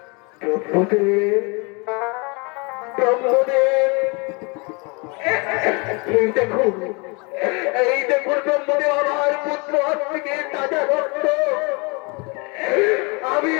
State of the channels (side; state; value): right; quieter; 30.5 dB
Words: ব্রহ্মদেব, ব্রহ্মদেব, এই দেখুন, এই দেখুন ব্রহ্মদেব, আমার পুত্র আজ থেকে তাজা রক্ত। আমি